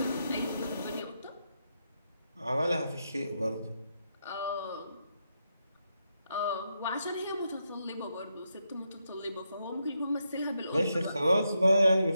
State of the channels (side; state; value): both; inverted; correlation -0.83